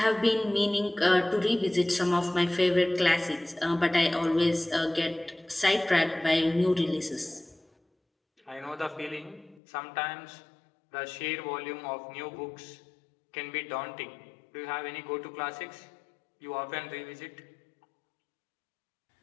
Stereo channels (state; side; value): drops out; right; at 9.6 s